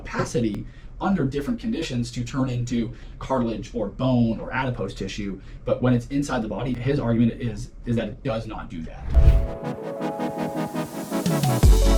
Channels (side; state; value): both; identical; correlation 1.00